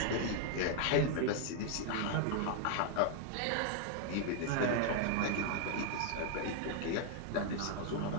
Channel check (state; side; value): different; both; correlation 0.00